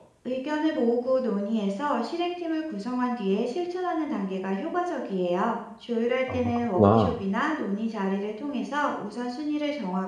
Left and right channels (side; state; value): both; identical; correlation 1.00